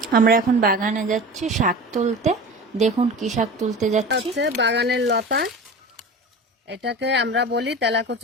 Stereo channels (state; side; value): normal; both; correlation 0.33